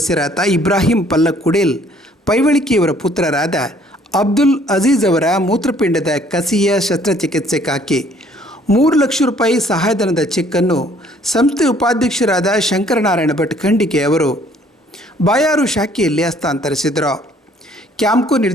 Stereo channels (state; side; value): normal; both; correlation 0.60